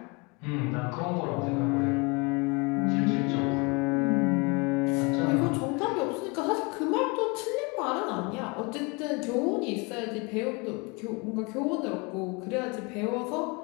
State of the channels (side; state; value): right; quieter; 29.1 dB